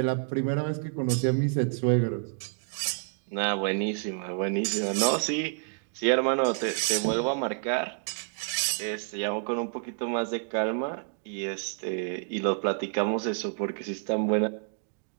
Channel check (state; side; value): silent; left; 59 dB below the other